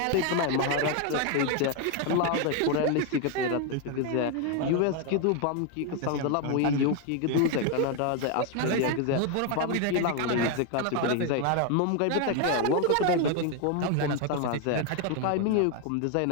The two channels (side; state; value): both; different; correlation 0.01